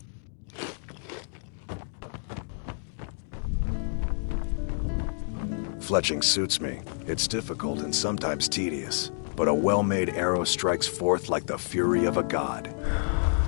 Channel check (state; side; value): silent; right; digital silence